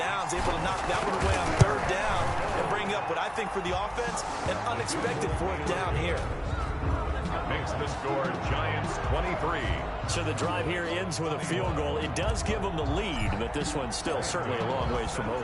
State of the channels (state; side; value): identical; both; correlation 1.00